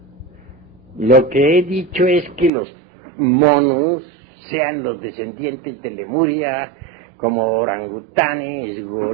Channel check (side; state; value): left; drops out; at 2.5 s